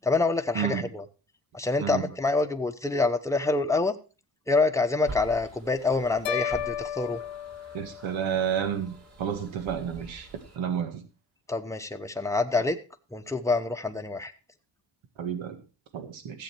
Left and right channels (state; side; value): normal; both; correlation 0.53